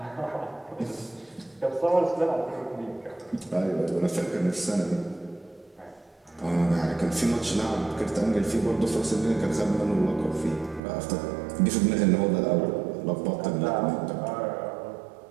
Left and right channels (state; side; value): drops out; left; at 10.8 s